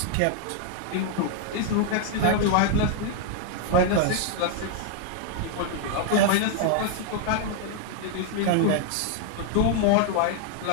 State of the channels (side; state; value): both; different; correlation 0.00